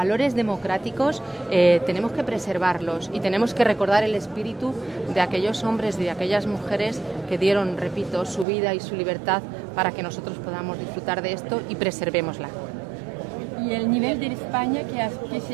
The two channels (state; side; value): drops out; left; at 8.5 s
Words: democráticos tenemos que preservarlos y tenemos que recordar el espíritu de aquellos hombres y de aquellas mujeres que dieron, repito, su vida y su libertad para que nosotros podamos disfrutar de esto y preservémosla. ¿Y el nivel de España qué